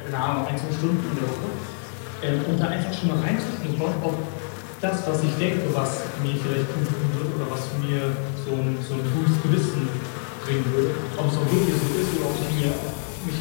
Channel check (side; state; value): right; silent; digital silence